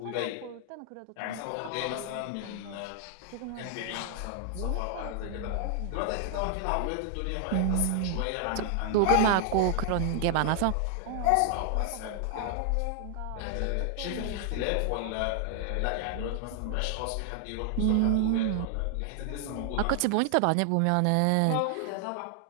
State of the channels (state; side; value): different; both; correlation 0.00